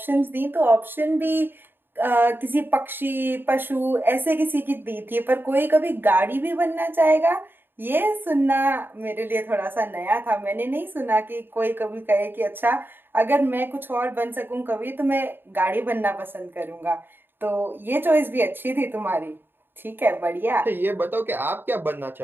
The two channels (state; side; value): late; left; 0.098 ms